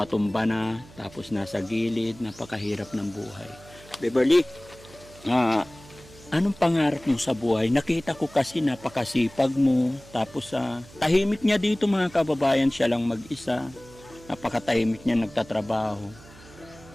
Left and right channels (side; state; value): right; noise; hum, 22 dB below the sound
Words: na, tapos nasa gilid, napakahirap ng buhay. Beverly, Anong pangarap mo sa buhay? Nakita ko kasi napakasipag mo. Tapos tahimik niya dito mga kababayan, siya lang mag-isa. Napakatahimik niya nagtatrabaho.